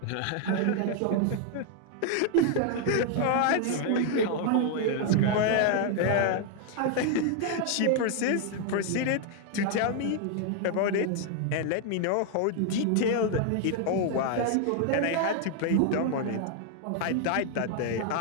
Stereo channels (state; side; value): different; both; correlation 0.00